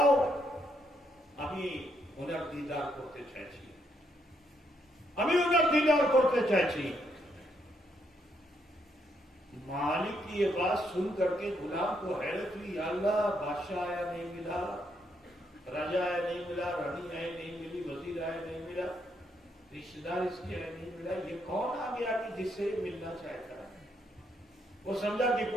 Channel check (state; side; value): normal; both; correlation 0.76